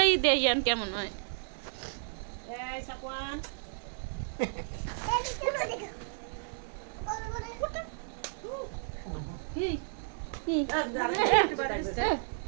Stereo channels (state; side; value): silent; left; 56 dB below the other